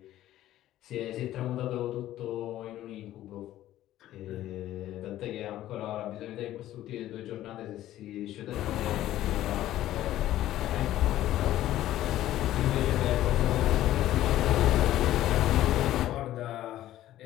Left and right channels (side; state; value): right; quieter; 13.7 dB